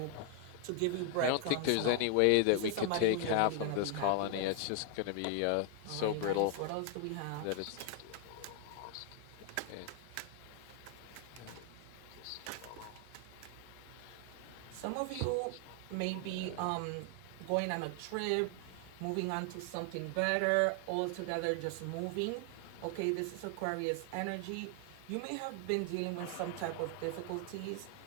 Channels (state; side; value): different; both; correlation 0.00